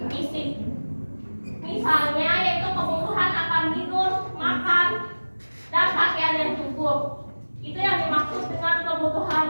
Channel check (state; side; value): inverted; both; correlation -1.00